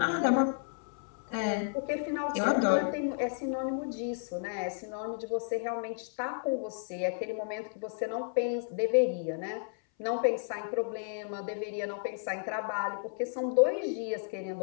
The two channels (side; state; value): right; silent; 56 dB below the other